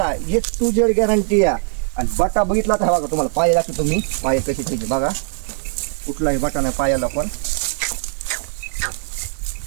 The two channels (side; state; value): left; silent; digital silence